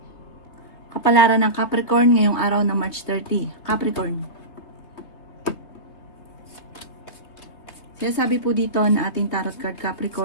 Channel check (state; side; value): late; right; 3.2 ms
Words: Kapalaran ng Capricorn ngayong araw ng March 30. Capricorn. Sinasabi po dito na ating tarot card